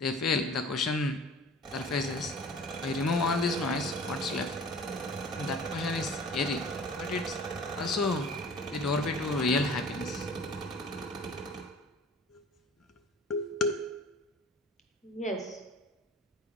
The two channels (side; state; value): both; normal; correlation 0.45